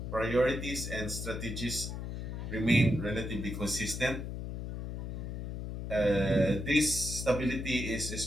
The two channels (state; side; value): noise; left; hum, 5 dB below the sound